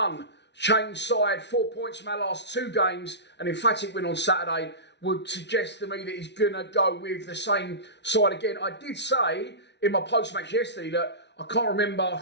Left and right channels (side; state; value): right; late; 0.50 ms